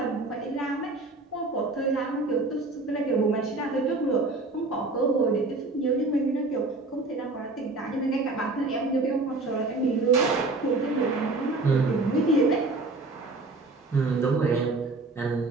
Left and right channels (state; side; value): quieter; left; 3.3 dB